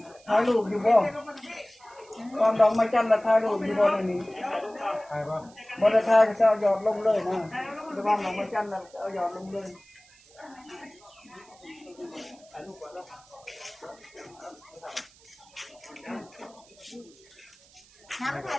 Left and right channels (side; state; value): right; noise; hiss, 26 dB below the sound